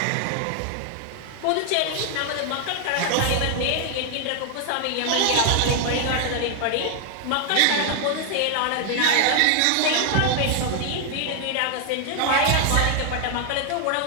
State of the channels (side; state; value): both; different; correlation 0.00